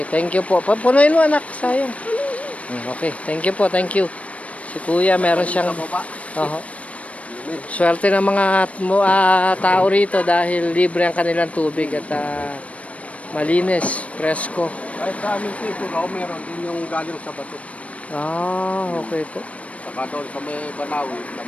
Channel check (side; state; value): right; late; 0.065 ms